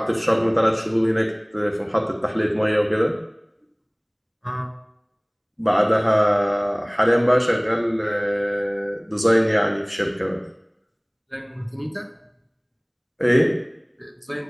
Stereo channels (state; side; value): identical; both; correlation 1.00